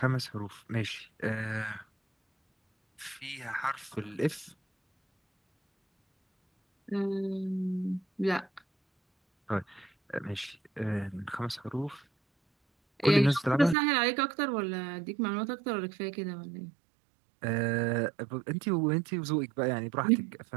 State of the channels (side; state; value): left; drops out; at 13.8 s